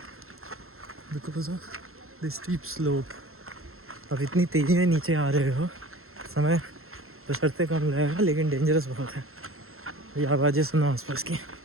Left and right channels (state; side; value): late; left; 0.62 ms